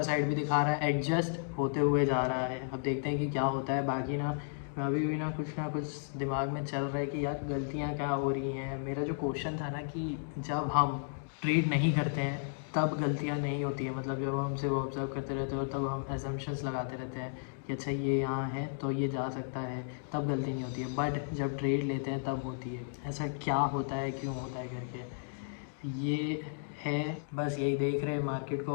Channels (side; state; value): right; silent; digital silence